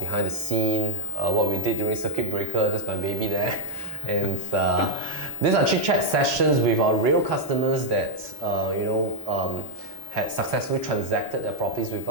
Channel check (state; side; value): normal; both; correlation 0.05